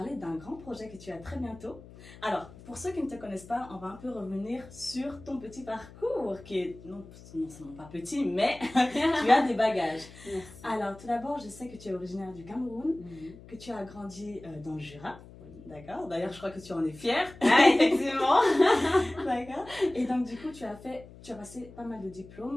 d'un grand projet que tu as très bientôt. Alors, pour ceux qui ne te connaissent pas, on va un peu revenir sur ton petit parcours, qui est non seulement pas petit, mais tu as des bagages. Merci. Alors, tout d'abord, je sais que tu es originaire du Cameroun, Mhm. que tu as grandi dans le Jura. D'accord. D'ailleurs, je crois que tu en es fière. Ah, effectivement. D'accord. Et donc, du coup, tu as passé pas mal de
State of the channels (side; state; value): left; noise; hum, 19 dB below the sound